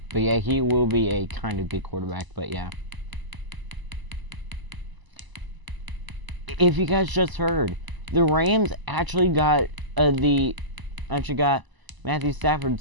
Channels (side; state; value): left; late; 1.0 ms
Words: yeah, he will be a kind of good quarterback, but yeah. If you guys just heard, the Rams actually got Matthew